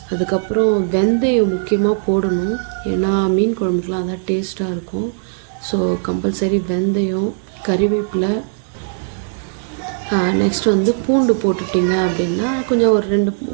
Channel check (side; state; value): left; silent; digital silence